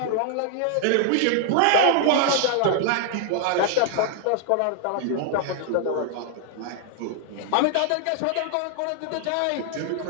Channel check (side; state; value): both; different; correlation 0.00